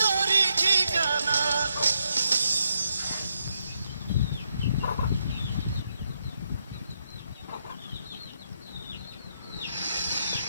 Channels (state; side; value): inverted; both; correlation -0.80